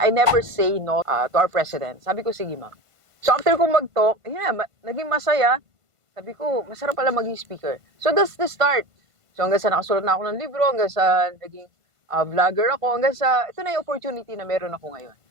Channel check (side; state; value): left; late; 1.5 ms